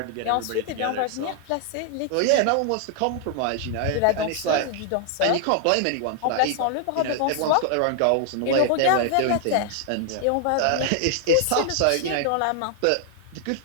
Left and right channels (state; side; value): different; both; correlation 0.00